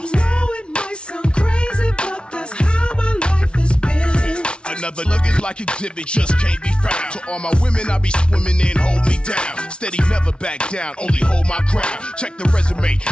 know it might sound crazy, but that's how my life has been. Another nugget like exhibit just can't be found. To all my women, I be swimming in, hold me down. Steady, never back down, only hold my ground. Check the resume,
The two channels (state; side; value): late; right; 0.057 ms